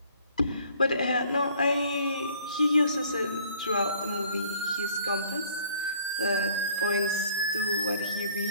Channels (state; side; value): inverted; both; correlation -0.57